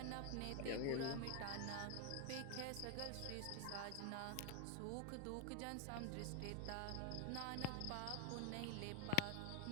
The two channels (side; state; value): both; different; correlation 0.00